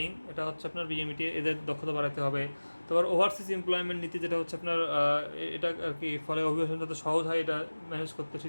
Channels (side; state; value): both; inverted; correlation -1.00